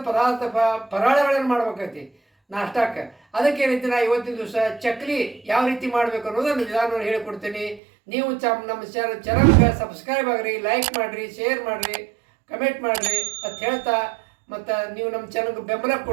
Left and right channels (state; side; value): drops out; left; at 7.8 s